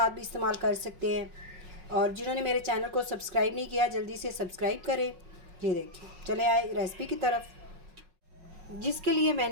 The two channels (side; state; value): left; late; 5.4 ms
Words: भी इस्तेमाल कर सकते हैं। और जिन्होंने मेरे चैनल को सब्सक्राइब नहीं किया जल्दी से सब्सक्राइब करें। ये देखिए, चले आए रेसिपी की तरफ। जिसके लिए